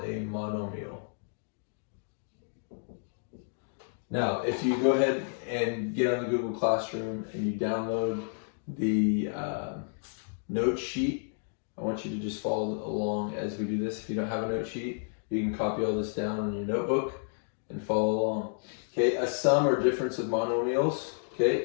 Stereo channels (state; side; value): silent; right; digital silence